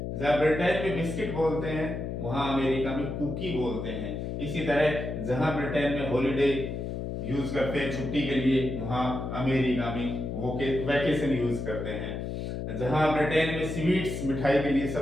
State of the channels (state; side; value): noise; left; hum, 4 dB below the sound